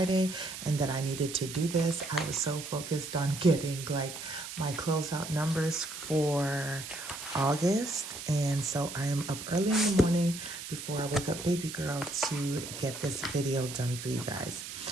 and that I needed to do this. I was so focused on getting like my closeout numbers for August, and so I am up early in the morning before I wake up baby girl to get this video done for you guys.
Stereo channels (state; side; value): noise; right; hiss, 9 dB below the sound